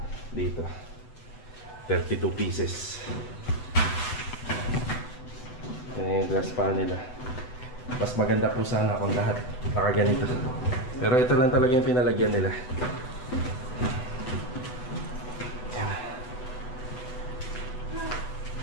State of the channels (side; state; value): right; late; 7.9 ms